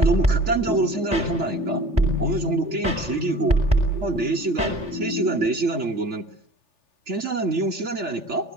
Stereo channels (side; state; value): left; late; 3.4 ms